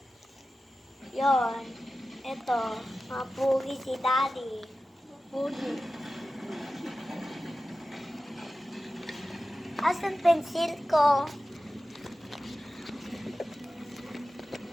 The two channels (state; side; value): normal; both; correlation 0.94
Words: Yon. Ito. Mapugi si daddy. Pugi. Asan pensil ko?